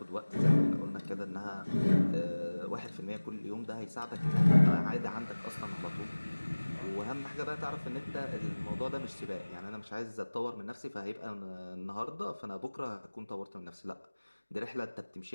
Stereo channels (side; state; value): both; inverted; correlation -1.00